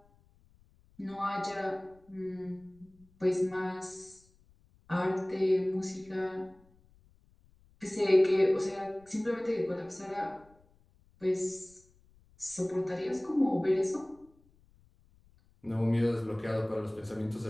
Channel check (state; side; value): noise; left; rumble, 30 dB below the sound